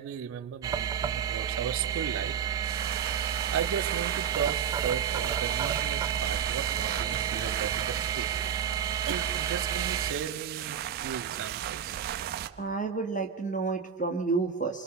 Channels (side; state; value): left; quieter; 7.9 dB